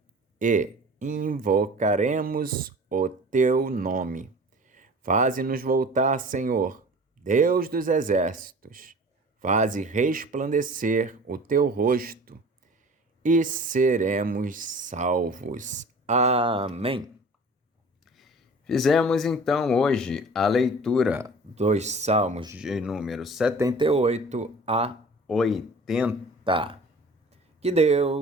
e invocaremos o teu nome. Faze-nos voltar, Senhor, Deus dos exércitos. Faze resplandecer o teu rosto e seremos salvos. Amém. Fizemos então hoje a leitura dos Salmos de número 78 a 80. Que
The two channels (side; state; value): both; normal; correlation 0.43